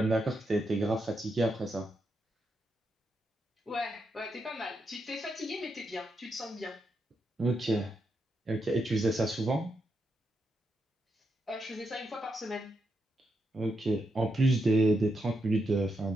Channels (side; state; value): both; normal; correlation 0.83